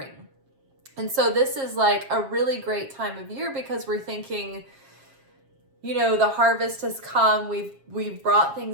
And so this is like a really great time of year because we're thinking, the harvest has come, we've brought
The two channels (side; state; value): left; late; 7.4 ms